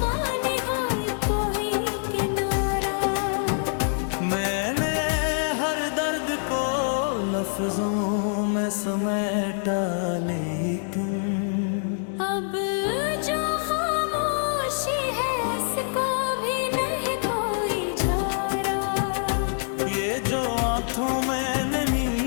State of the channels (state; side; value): silent; right; 60 dB below the other